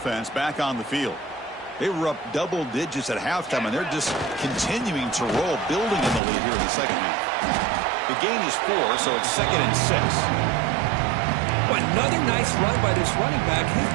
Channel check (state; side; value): drops out; left; at 6.2 s